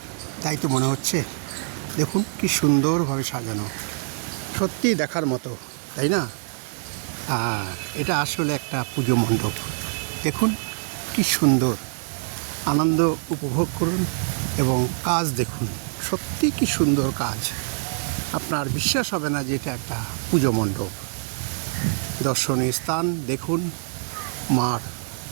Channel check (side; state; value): left; silent; digital silence